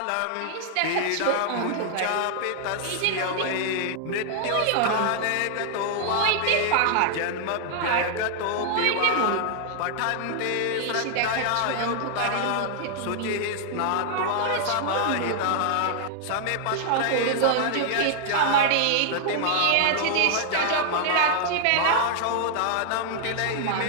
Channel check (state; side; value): different; both; correlation 0.00